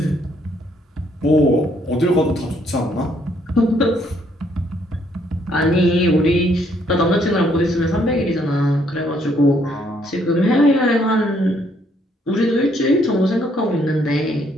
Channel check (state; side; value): normal; both; correlation 0.69